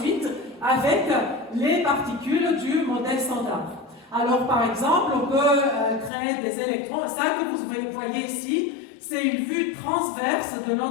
avec les particules du modèle standard. Alors, par exemple, on peut créer des électrons. Ça que vous voyez ici, c'est une vue transverse de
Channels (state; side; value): drops out; right; at 6.1 s